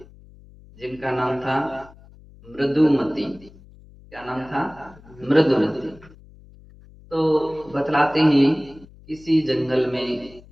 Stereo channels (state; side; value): noise; left; hum, 23 dB below the sound